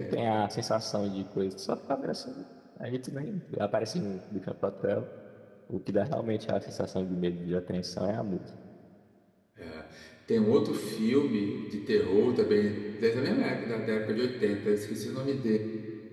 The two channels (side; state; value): both; identical; correlation 1.00